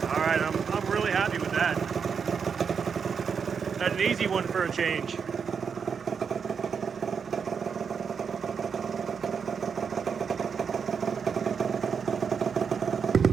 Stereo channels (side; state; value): left; quieter; 6.4 dB